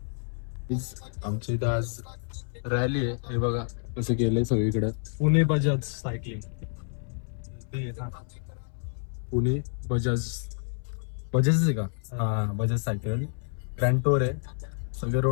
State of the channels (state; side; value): silent; right; 59 dB below the other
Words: आमच्या इथं आज रॅली आहे. हे बघा कसं केलंय सगळीकडे. पुणे बजाज सायकलिंग. पुणे बजाज बजाज आहे का? हा, बजाज सायकल ग्रँड टूर आहे. सगळे